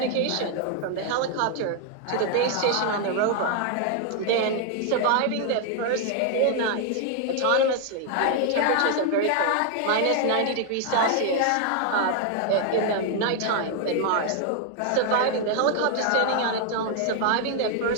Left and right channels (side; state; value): both; different; correlation 0.00